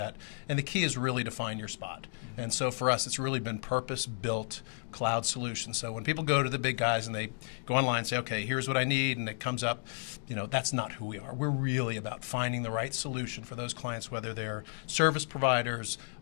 And the key is really to find your spot. And so for us, it's really been purpose-built cloud solutions. So when people go to the big guys and they go online and say, okay, here's what I need, and it comes up, you know, that's not who we are. We're really about finding the right solution for those clients, whether they're service providers,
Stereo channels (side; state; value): right; silent; digital silence